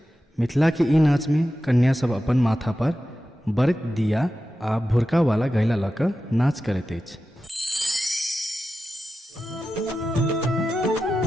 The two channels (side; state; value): both; normal; correlation 0.92